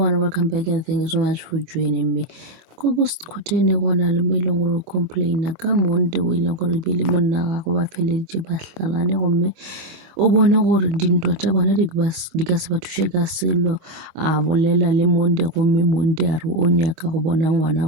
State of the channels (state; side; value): late; left; 25 ms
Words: welcome back and thank you so much for joining me. Ko Khoteni go na le mo e leng gore o complaina ka Monday o e leng gore ebile monna wa gagwe ba feleditše ba hlalane gomme o bone gore dintwa tša bona di ka se ba thuše ka selo a bolela le Monday gomme Monday a re o nyaka go bona ngwana